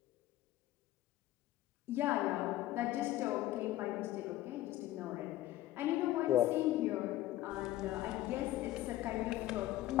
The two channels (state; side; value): quieter; right; 15.0 dB